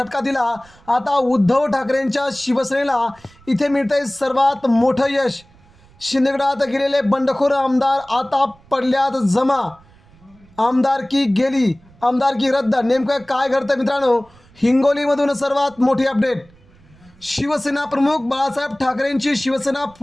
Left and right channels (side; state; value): right; noise; rumble, 28 dB below the sound